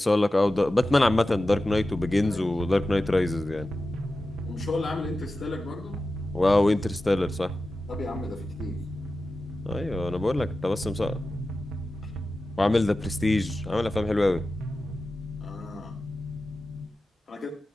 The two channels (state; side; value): normal; both; correlation 0.94